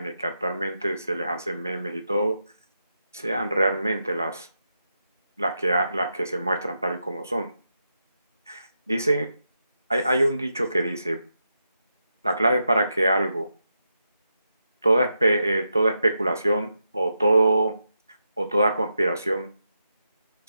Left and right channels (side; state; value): both; inverted; correlation -0.86